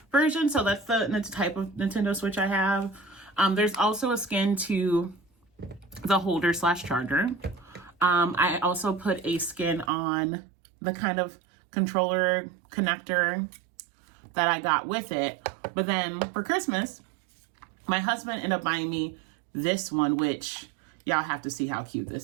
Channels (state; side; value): drops out; left; at 9.9 s